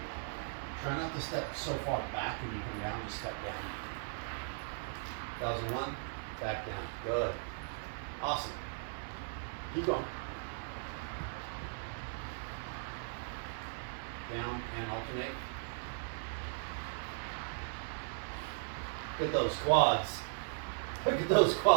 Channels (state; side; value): silent; left; digital silence